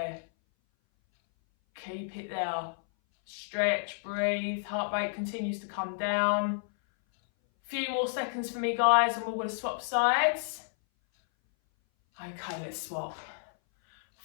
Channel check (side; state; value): right; silent; 57 dB below the other